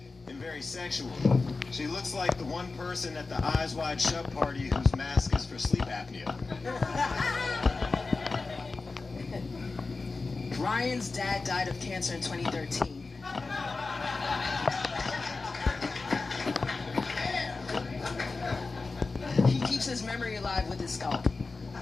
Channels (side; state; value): right; quieter; 3.9 dB